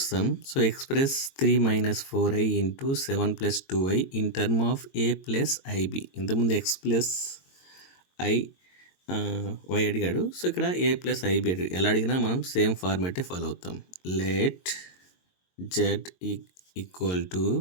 So express 3 - 4i into 7 + 2i in term of A plus IB. ఇంతకుముందు ఎక్స్ ప్లస్ ఐ వై అడిగాడు, సో ఇక్కడ ఏ ప్లస్ ఐబి అడిగాడు. ఎలా అడిగినా మనం సేమ్ ఫార్మాటే ఫాలో అవుతాం. Let Z equal to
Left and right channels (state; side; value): late; right; 22 ms